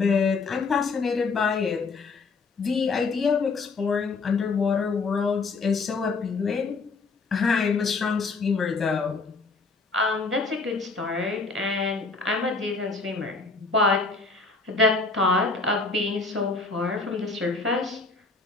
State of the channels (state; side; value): quieter; right; 4.1 dB